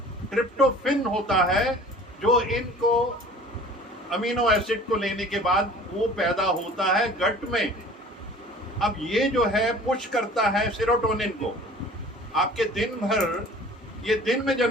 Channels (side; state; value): both; normal; correlation 0.46